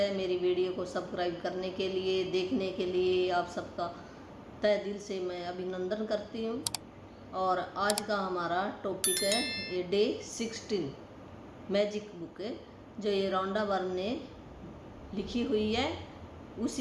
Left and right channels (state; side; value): identical; both; correlation 1.00